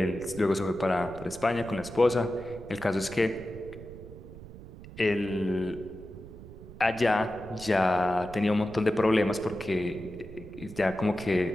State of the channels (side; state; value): right; noise; rumble, 15 dB below the sound